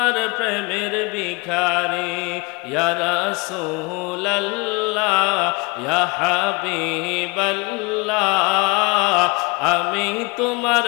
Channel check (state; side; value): quieter; right; 27.8 dB